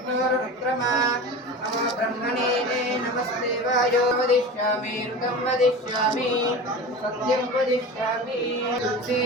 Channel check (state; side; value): normal; both; correlation 0.32